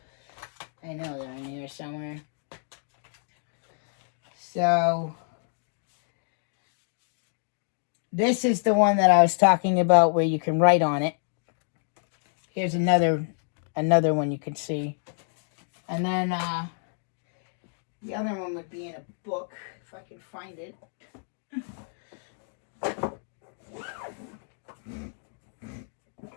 I know they're in here somewhere. So this is the one that I was talking about where you can write on it. Here's another one you can see. And then the other one would be in a book, if I can find it.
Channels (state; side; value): silent; right; digital silence